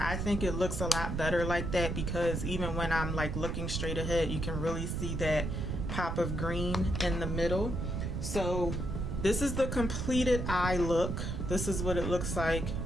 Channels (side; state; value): right; noise; rumble, 2 dB below the sound